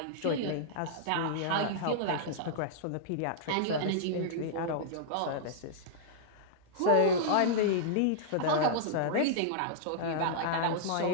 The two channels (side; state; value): both; different; correlation -0.02